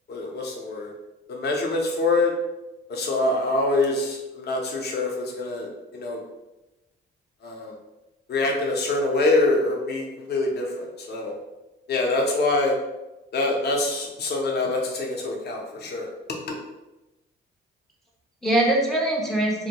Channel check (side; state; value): both; normal; correlation 0.34